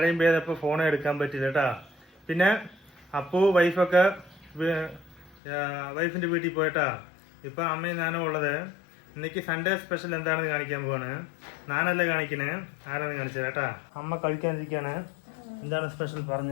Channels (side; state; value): right; drops out; at 5.4 s